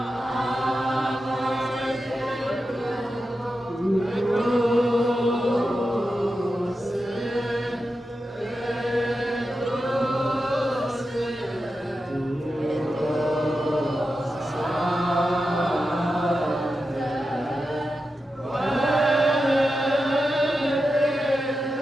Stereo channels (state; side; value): normal; both; correlation 0.90